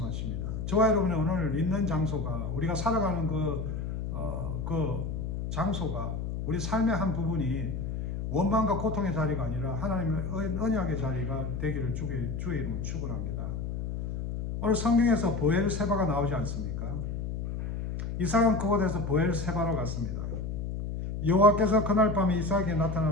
저와 여러분이 오늘 있는 장소가, 우리가 살아가는 그 장소가, 우리 삶의 한 부분이 원망과 고통의 자리가 아니라 하나님의 언약의 자리가 되기를 주의 이름으로 축원합니다. 오늘 성경에서 보엘세바가 나오지 않습니까? 이삭은 그곳에서 보엘세바로 갔습니다. 여호와께서 그날 밤에 이삭에게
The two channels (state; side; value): noise; left; hum, 4 dB below the sound